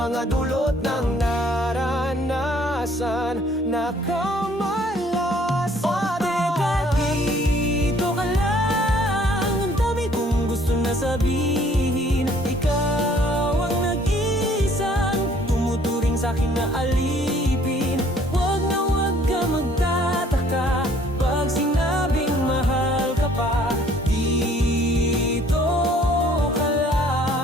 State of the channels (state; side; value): normal; both; correlation 0.59